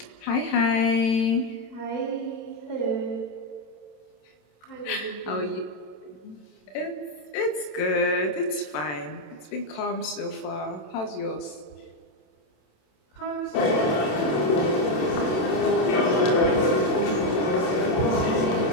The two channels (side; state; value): right; late; 27 ms